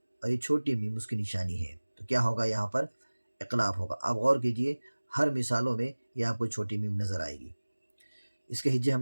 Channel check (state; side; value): inverted; both; correlation -1.00